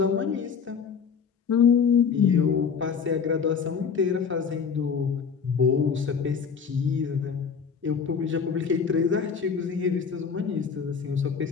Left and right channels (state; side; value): quieter; right; 6.3 dB